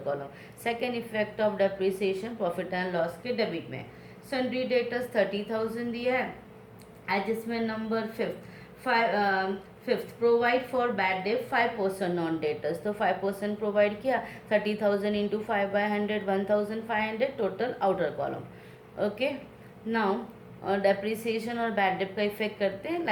column. Second effect of depreciation profit and loss के debit में. Sundry debtors 30,000 दिया है. Adjustment number 5th provide for bad debt 5% non debtors, तो 5% प्रोवाइड किया. 30,000 into 5/100 1,500. Total outer column. Okay, now depreciation और bad debt का effect करते हैं.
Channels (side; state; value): both; identical; correlation 1.00